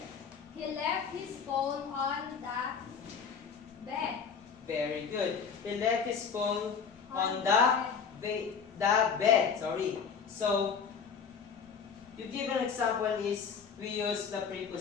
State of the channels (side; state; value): right; quieter; 6.3 dB